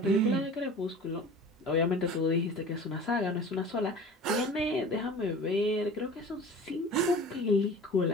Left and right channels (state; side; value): normal; both; correlation 0.40